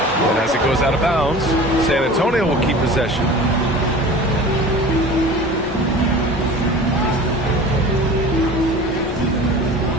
And as it goes out of bounds, San Antonio will keep possession.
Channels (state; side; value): normal; both; correlation 0.39